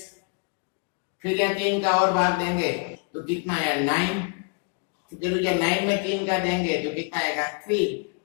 फिर यह 3 का और भाग देंगे तो कितना आया 9, फिर 9 में 3 का देंगे तो कितना आएगा 3,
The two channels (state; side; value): quieter; right; 38.8 dB